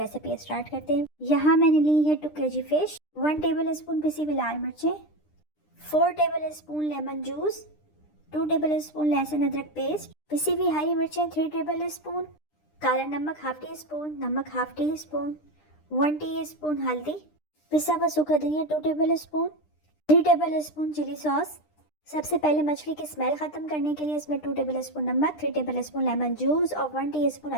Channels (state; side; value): late; right; 9.9 ms